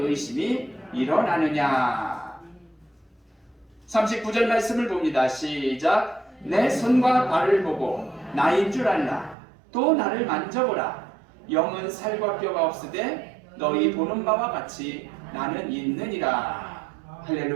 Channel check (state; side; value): drops out; left; at 9.3 s